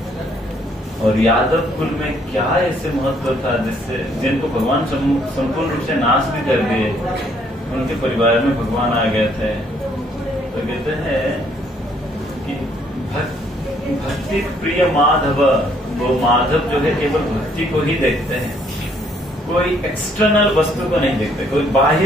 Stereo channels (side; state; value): both; normal; correlation 0.66